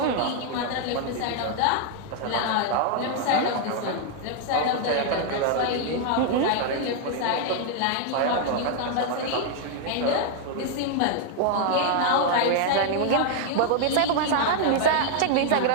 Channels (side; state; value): both; different; correlation 0.00